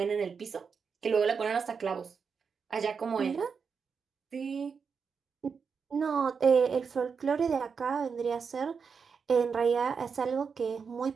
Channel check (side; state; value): left; quieter; 5.8 dB